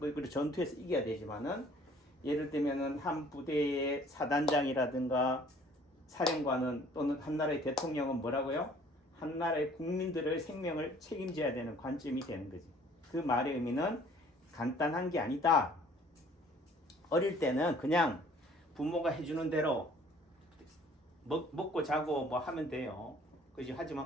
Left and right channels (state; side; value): normal; both; correlation 0.55